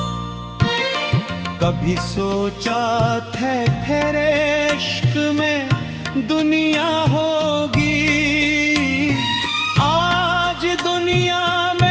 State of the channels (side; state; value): both; identical; correlation 1.00